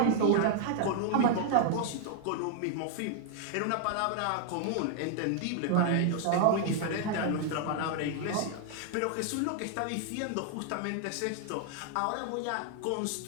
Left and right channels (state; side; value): different; both; correlation 0.00